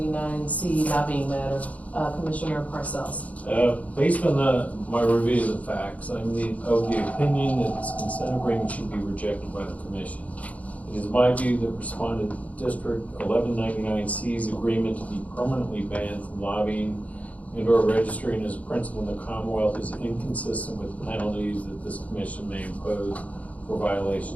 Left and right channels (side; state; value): right; late; 0.069 ms